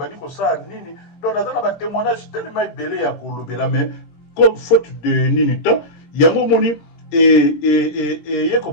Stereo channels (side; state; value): right; late; 17 ms